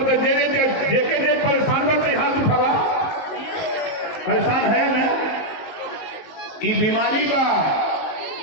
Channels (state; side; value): late; right; 19 ms